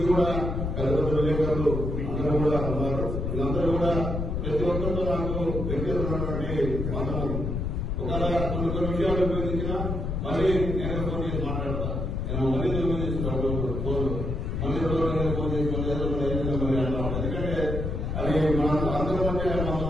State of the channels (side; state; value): left; noise; rumble, 2 dB below the sound